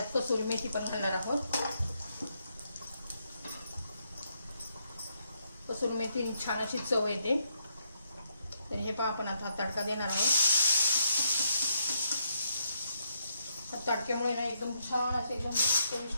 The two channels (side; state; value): both; inverted; correlation -0.77